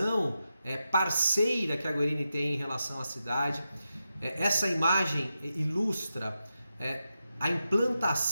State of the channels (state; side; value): inverted; both; correlation -0.89